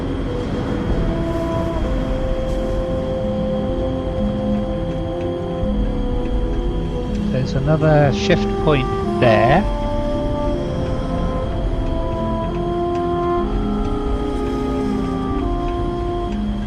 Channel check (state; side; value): identical; both; correlation 1.00